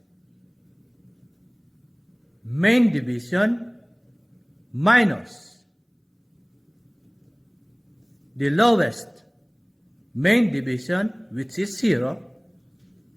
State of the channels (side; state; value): both; identical; correlation 1.00